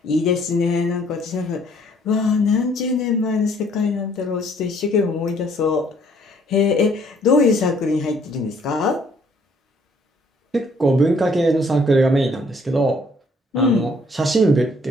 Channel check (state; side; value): normal; both; correlation 0.63